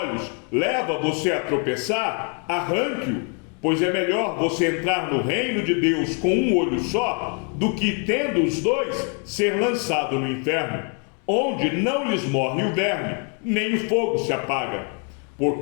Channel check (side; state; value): right; quieter; 38.9 dB